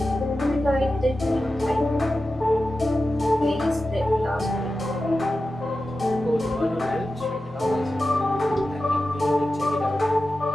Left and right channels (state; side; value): normal; both; correlation 0.92